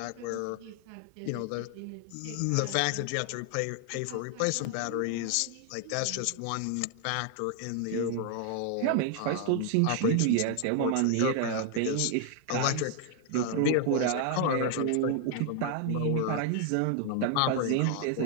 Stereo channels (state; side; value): different; both; correlation 0.00